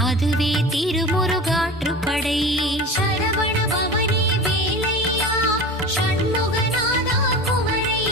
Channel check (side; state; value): both; normal; correlation 0.33